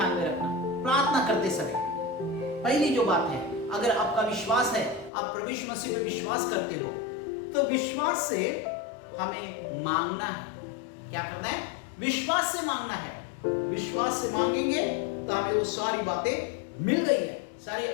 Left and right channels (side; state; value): right; drops out; at 5.1 s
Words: में रखना प्रार्थना करते समय। पहली जो बात है, अगर आपका विश्वास है, आप प्रभु यीशु मसीह पे विश्वास करते हो, तो विश्वास से हमें मांगना है। क्या करना है? विश्वास से मांगना है। विश्वास से मांगेंगे तो हमें वो सारी बातें मिल गई है, सारे